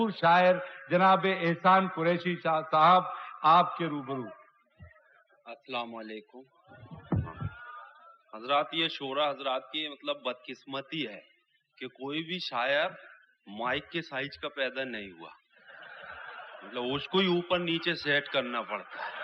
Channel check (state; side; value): identical; both; correlation 1.00